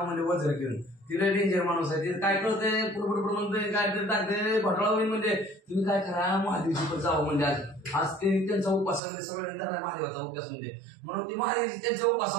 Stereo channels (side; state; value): left; drops out; at 9.0 s